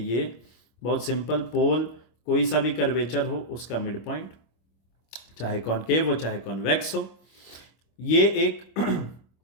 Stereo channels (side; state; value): right; late; 25 ms